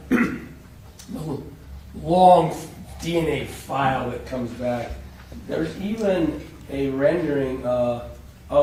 long DNA file that comes back, there's even a rendering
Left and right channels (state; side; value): identical; both; correlation 1.00